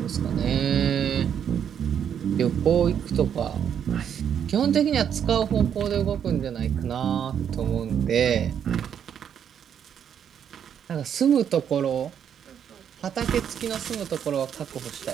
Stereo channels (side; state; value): left; quieter; 8.6 dB